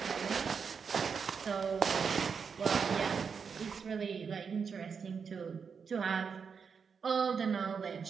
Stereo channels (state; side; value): quieter; left; 6.1 dB